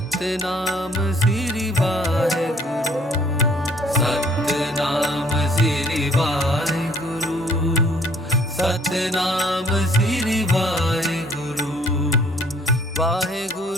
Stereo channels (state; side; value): normal; both; correlation 0.59